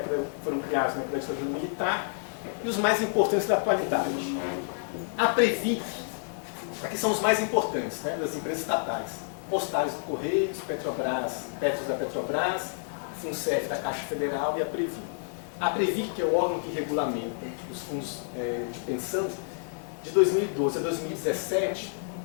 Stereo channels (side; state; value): right; silent; digital silence